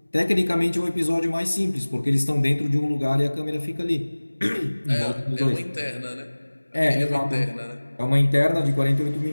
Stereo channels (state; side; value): inverted; both; correlation -1.00